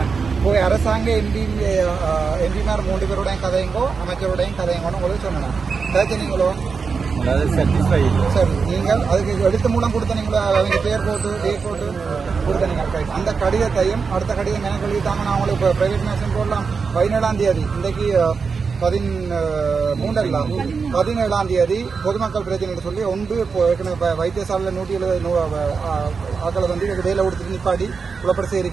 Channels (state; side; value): quieter; left; 5.2 dB